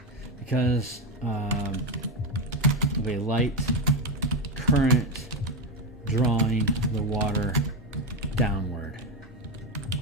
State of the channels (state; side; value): normal; both; correlation 0.10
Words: because of a light current drawing the water downward.